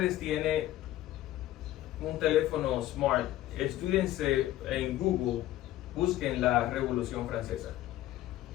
tiene un teléfono smart, estúdiense en Google, busquen la Revolución Francesa.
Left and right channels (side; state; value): right; quieter; 14.3 dB